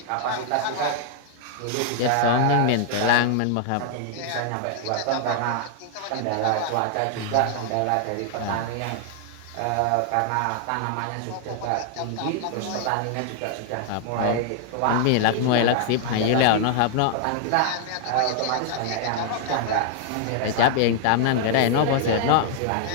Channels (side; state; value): both; different; correlation 0.00